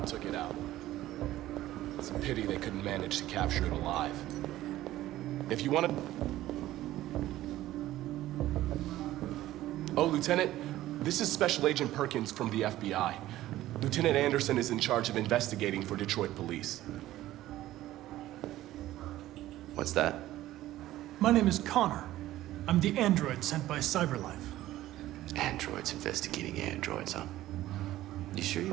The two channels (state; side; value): quieter; left; 14.9 dB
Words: took it out. It's a pity they couldn't manage to capture it alive. If you want to... Oh, Lieutenant, this is Special Agent Perkins from the FBI. Lieutenant Anderson is in charge of investigating for Detroit police. What's that? My name is Connor. I'm the android sent by CyberLife. Androids investigating androids, huh? You sure